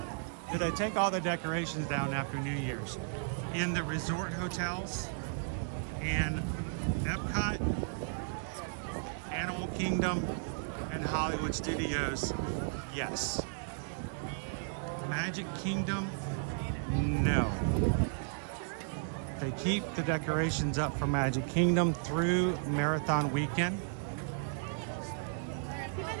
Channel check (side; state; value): left; silent; digital silence